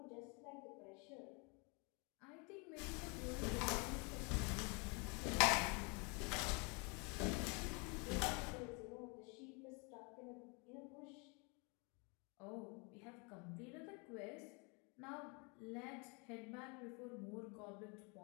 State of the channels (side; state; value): right; quieter; 32.2 dB